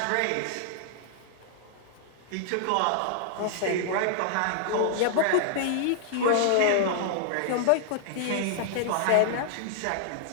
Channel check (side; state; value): both; different; correlation -0.01